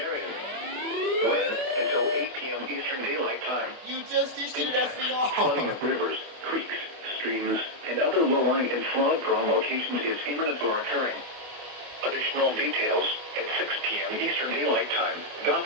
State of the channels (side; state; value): left; late; 25 ms